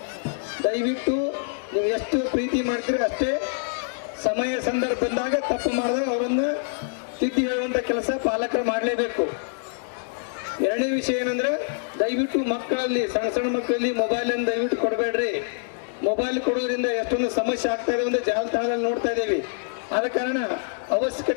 ದಯವಿಟ್ಟು ನೀವು ಎಷ್ಟು ಪ್ರೀತಿ ಮಾಡ್ತೀರಿ ಅಷ್ಟೇ ಸಮಯ ಸಂದರ್ಭ ಬಂದಾಗ ತಪ್ಪು ಮಾಡಿದಾಗ ಅವರನ್ನು ತಿದ್ದಿ ಹೇಳುವಂಥ ಕೆಲಸ ಪಾಲಕರು ಮಾಡಲೇಬೇಕು. 2ನೇ ವಿಷಯ ಏನಂದ್ರೆ, ದಯವಿಟ್ಟು ಮಕ್ಕಳಲ್ಲಿ, ಸಣ್ಣ ಸಣ್ಣ ಮಕ್ಕಳಲ್ಲಿ ಮೊಬೈಲನ್ನು ದಯವಿಟ್ಟು ಕೊಡಬೇಡ್ರಿ. ಮೊಬೈಲ್ ಕೊಡೋದ್ರಿಂದ ಎಷ್ಟೊಂದು ಸಮಸ್ಯೆ ಆಗ್ತಾ ಇದೆ ಅಂತ ಜಾಲತಾಣದಲ್ಲಿ ನೋಡ್ತಾ ಇದ್ದೀವಿ. ಆದ ಕಾರಣ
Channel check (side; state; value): right; silent; digital silence